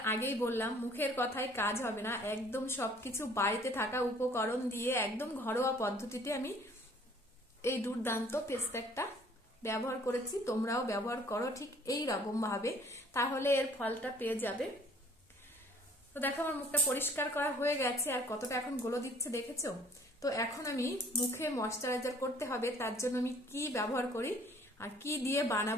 আগেই বললাম মুখের কথায় কাজ হবে না, একদম সবকিছু বাড়িতে থাকা উপকরণ দিয়ে একদম ঘরোয়া পদ্ধতিতে আমি এই দুর্দান্ত ফেস প্যাকটা ব্যবহার করেছি। তোমরাও ব্যবহার করো ঠিক এই রকম ভাবে, তাহলে এর ফলটা পেয়ে যাবে। তো দেখো আমার মুখটা পরিষ্কার করা হয়ে গেছে, আর কতটা এখন গ্লো দিচ্ছে দেখেছো। তো এখন আমি মুখে ময়শ্চারাইজার করতে হবে, তার জন্য আমি কি ব্যবহার করি আর কি দিয়ে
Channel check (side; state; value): both; normal; correlation 0.56